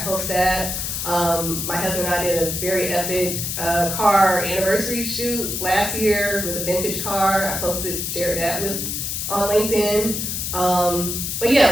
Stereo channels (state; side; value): noise; left; hiss, 3 dB below the sound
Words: post that. My husband and I did a very epic car anniversary shoot last year with a vintage car. I shared that on LinkedIn. But